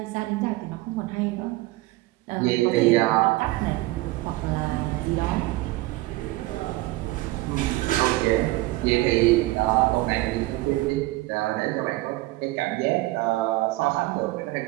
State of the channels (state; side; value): quieter; left; 19.6 dB